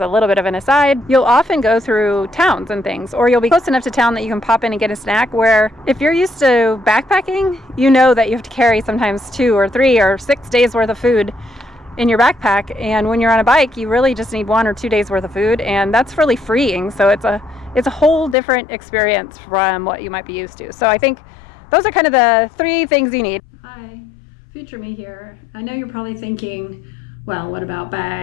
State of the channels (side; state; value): right; drops out; at 18.4 s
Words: little bit of an aside, you'll often go through towns and things, or you'll be close enough to town that you can pop in and get a snack, where if you're used to backpacking, you know that you have to carry sometimes 2 or 3 or 6 days worth of food in your backpack, and when you're on a bike, you really just need 1 or 2 days worth of food, and that's really freeing. So it's a whole different experience from what you might be used to. So I think those are kind of the 3 things you need. Hi, future me here. I know you're probably thinking, well, what about